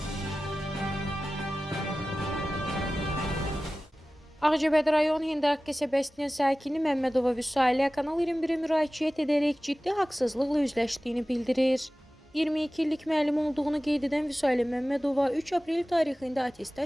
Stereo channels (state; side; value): normal; both; correlation 0.96